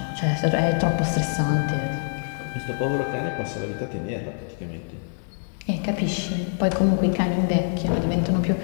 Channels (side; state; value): right; silent; digital silence